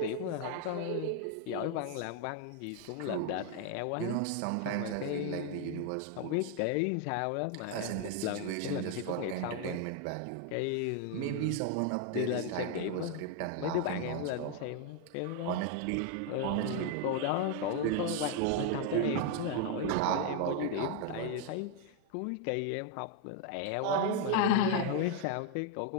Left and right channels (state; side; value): different; both; correlation 0.01